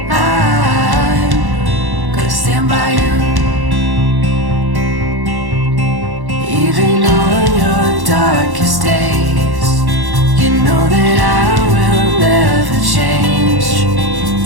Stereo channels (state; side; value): late; left; 1.1 ms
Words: I'm gonna stand by you, even on your darkest days. You know that I will never change.